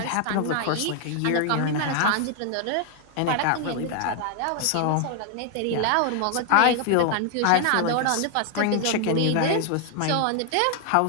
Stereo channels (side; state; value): both; different; correlation 0.00